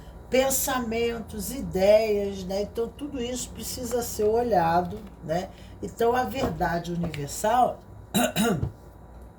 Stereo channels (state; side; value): identical; both; correlation 1.00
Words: pensamentos, ideias, né? Então, tudo isso precisa ser olhado, né? Então, a verdade universal